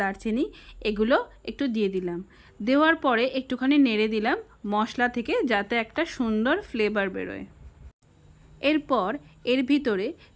দারচিনি এগুলো একটু দিয়ে দিলাম। দেওয়ার পরে একটুখানি নেড়ে দিলাম মশলা থেকে, যাতে একটা সুন্দর ফ্লেভার বেরোয়। এরপর এর ভিতরে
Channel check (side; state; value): both; identical; correlation 1.00